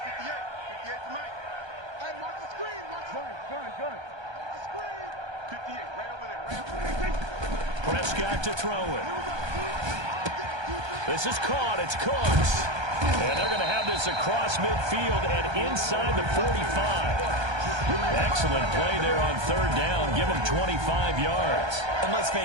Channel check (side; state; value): left; late; 1.3 ms